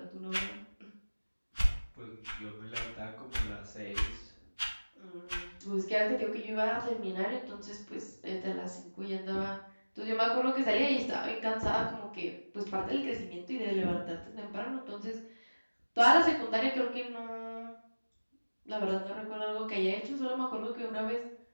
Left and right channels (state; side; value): inverted; both; correlation -1.00